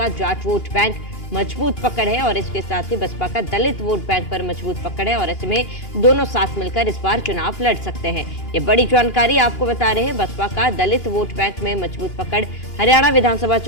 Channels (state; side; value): late; right; 2.8 ms